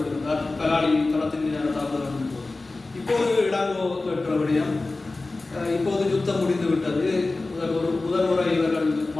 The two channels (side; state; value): right; quieter; 3.3 dB